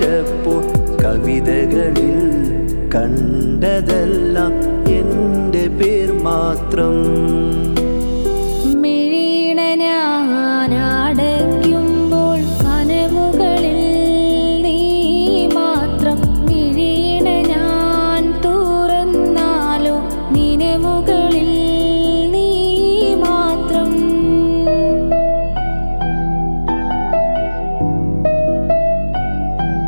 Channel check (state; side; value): inverted; both; correlation -1.00